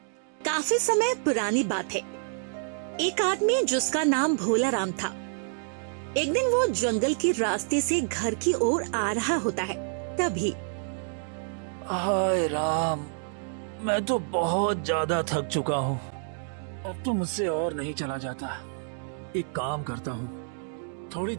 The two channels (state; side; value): silent; left; digital silence